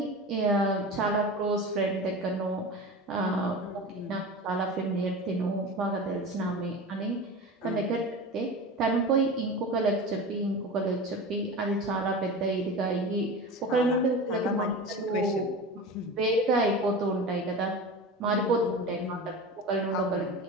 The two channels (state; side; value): normal; both; correlation 0.30